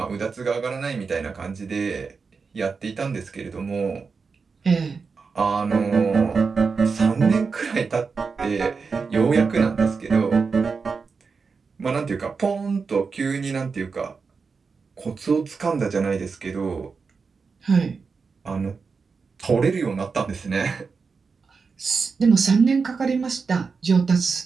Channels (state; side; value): quieter; left; 5.0 dB